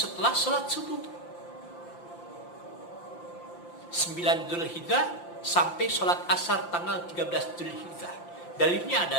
salat subuh 9 Dzulhijjah sampai salat asar tanggal 13 Dzulhijjah. Dalilnya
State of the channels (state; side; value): late; right; 5.8 ms